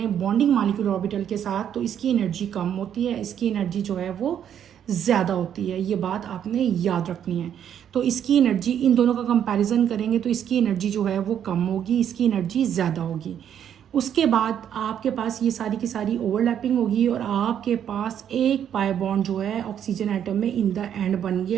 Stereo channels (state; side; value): quieter; left; 9.4 dB